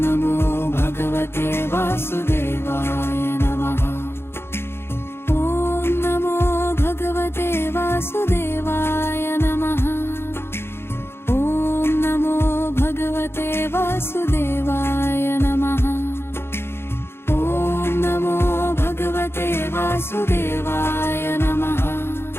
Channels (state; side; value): late; right; 0.12 ms